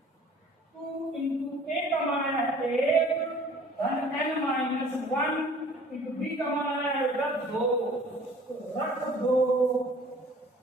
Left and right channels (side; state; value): both; normal; correlation 0.50